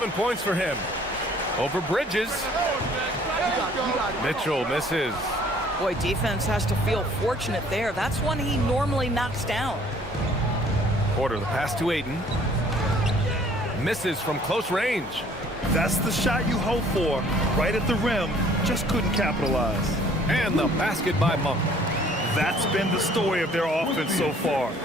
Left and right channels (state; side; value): normal; both; correlation 0.57